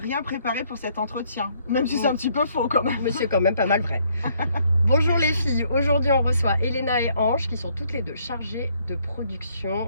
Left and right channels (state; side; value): inverted; both; correlation -0.68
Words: préparé pour cet entretien, même si c'est un petit peu faux quand même. Mais c'est quand même pas mal vrai. Bonjour les filles, aujourd'hui on reçoit Elena et Ange qui sont toutes les deux chargées de production